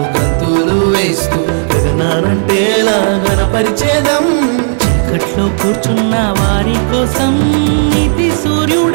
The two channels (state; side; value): silent; left; digital silence